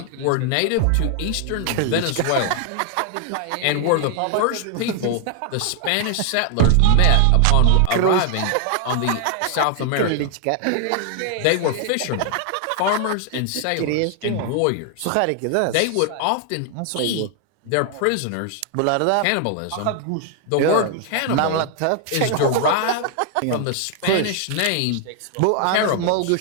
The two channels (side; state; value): both; different; correlation 0.00